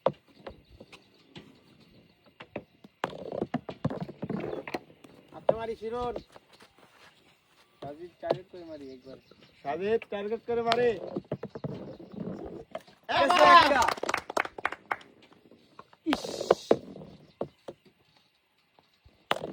আচ্ছা মারি শিরন সাজিদ টার্গেট করে মারি একবার সাজিদ টার্গেট করে মারি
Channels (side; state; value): both; identical; correlation 1.00